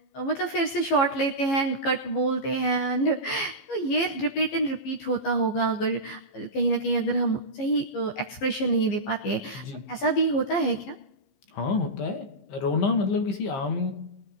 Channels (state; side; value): late; right; 15 ms